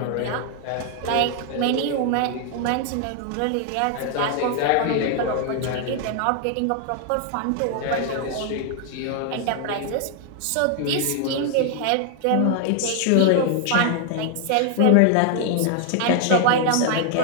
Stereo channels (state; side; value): different; both; correlation 0.00